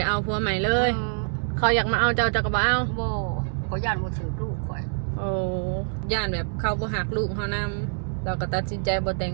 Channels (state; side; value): silent; left; digital silence